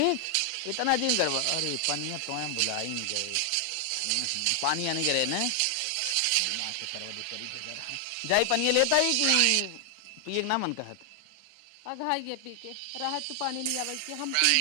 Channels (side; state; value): both; different; correlation 0.00